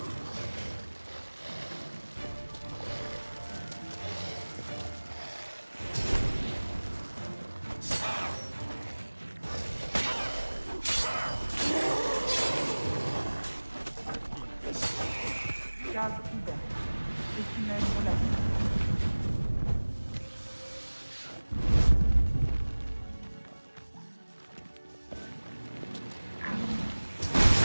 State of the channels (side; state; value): both; inverted; correlation -1.00